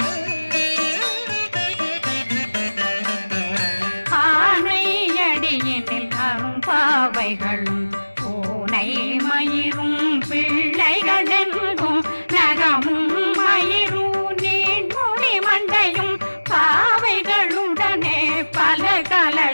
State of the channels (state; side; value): inverted; both; correlation -1.00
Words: ஆனையடியினில் அரும்பாவைகளும் பூனை மயிரும் பிள்ளைகளெங்கும் நகமும் மயிரும் நீண்மொழி மண்டையும் பாவைகளுடனே பல